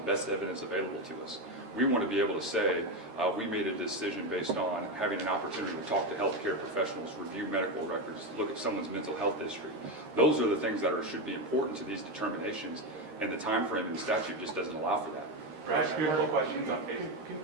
best evidence available to us. We want to be able to say we made a decision based on having an opportunity to talk to healthcare professionals, review medical records, look at someone's mental health history. Those are the things that should be important to these determinations. And the time frame in the statute just doesn't allow for that. Right, a couple questions on page.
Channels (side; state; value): left; late; 13 ms